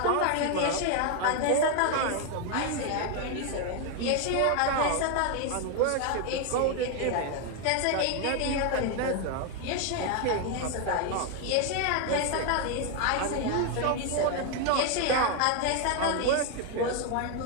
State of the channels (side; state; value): both; different; correlation 0.01